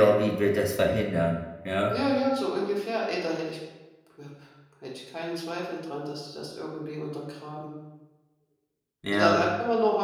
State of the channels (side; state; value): both; identical; correlation 1.00